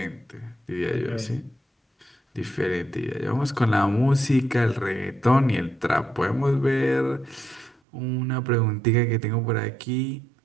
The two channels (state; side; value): drops out; left; at 7.8 s